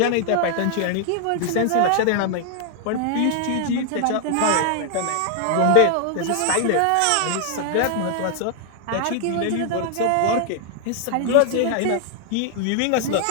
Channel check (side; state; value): both; different; correlation 0.00